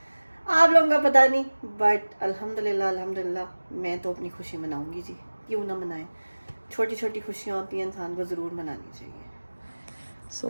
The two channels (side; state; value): both; inverted; correlation -1.00